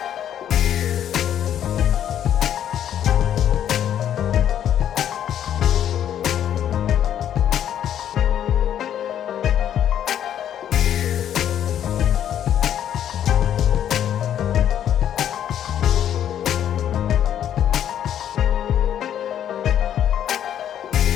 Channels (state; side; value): quieter; right; 10.2 dB